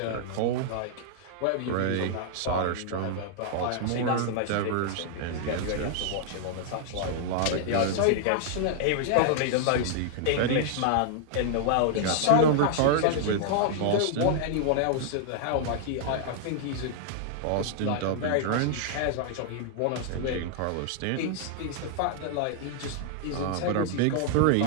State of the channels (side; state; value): both; different; correlation -0.01